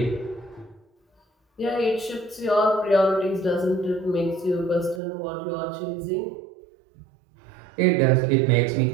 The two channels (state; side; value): drops out; left; at 5.0 s